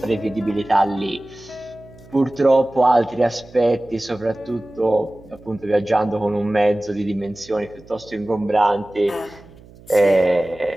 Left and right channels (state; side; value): noise; right; hum, 23 dB below the sound